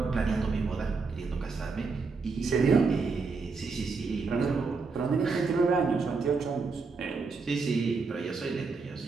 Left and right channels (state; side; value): quieter; left; 4.5 dB